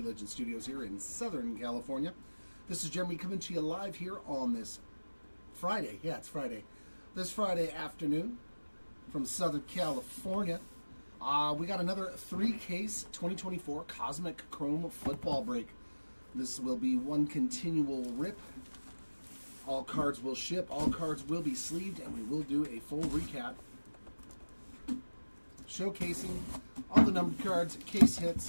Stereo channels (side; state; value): both; inverted; correlation -1.00